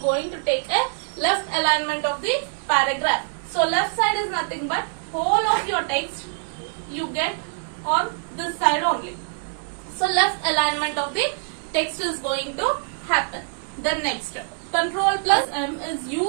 to take a left alignment of the paragraph. So left side is nothing but whole of your text you get on this side only. So left alignment of the text is going to happen. Then next, Control plus M is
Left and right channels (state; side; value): silent; left; digital silence